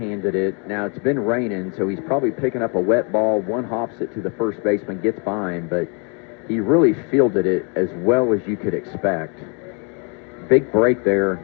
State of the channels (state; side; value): quieter; right; 36.0 dB